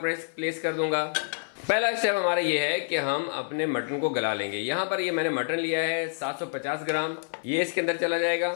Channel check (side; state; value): right; silent; 58 dB below the other